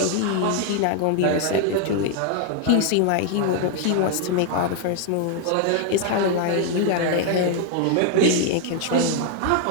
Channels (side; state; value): both; different; correlation 0.00